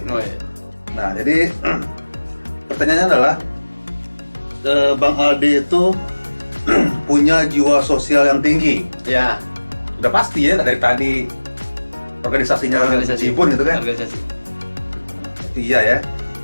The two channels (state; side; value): inverted; both; correlation -1.00